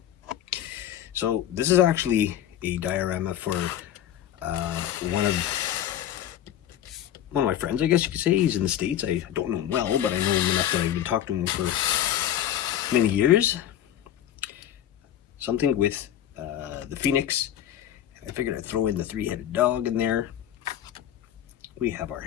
So this is actually a diorama for one of my friends, I guess you could say. He's in the States. I don't know him well, but I know him enough that I've been talking to him for many years. Something with the Phoenix. I figured I'd throw in the three-headed dog in there. We have our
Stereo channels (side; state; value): right; quieter; 11.2 dB